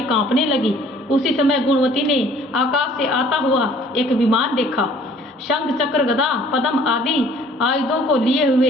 कांपने लगी। उसी समय गुणवती ने आकाश से आता हुआ एक विमान देखा। शंख, चक्र, गदा, पद्म आदि आयुधों को लिए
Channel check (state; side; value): normal; both; correlation 0.55